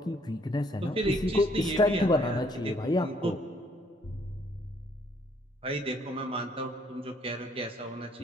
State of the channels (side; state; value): both; normal; correlation 0.66